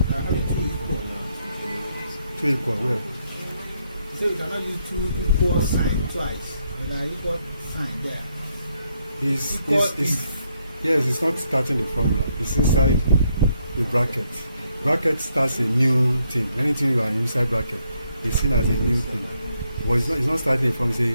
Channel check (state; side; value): inverted; both; correlation -0.76